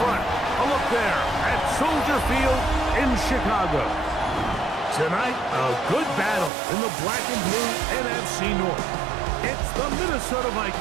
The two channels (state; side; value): drops out; left; at 6.5 s